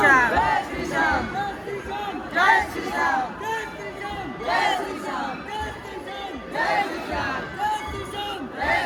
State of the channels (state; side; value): identical; both; correlation 1.00